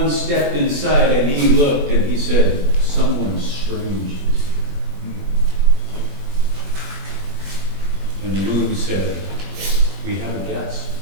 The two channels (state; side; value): late; left; 21 ms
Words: step inside and he looked and he said, "Someone strange is here." And the moon said, "We have a guest."